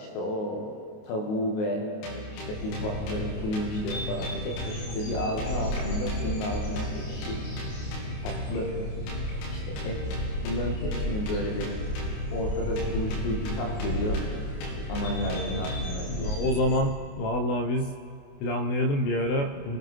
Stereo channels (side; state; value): right; late; 28 ms